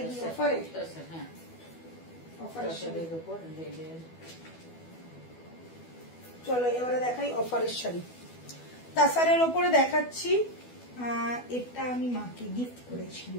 কি অফারে? হ্যাঁ, অফারের উপর রেডের। চলো এবারে দেখাই অফারের শাড়ি। তাসারের ওপরে দেখাচ্ছি, এটা আমি মাকে গিফট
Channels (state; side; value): late; right; 12 ms